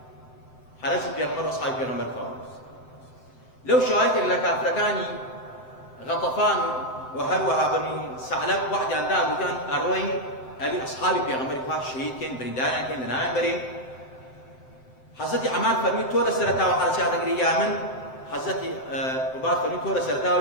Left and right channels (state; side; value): late; right; 7.8 ms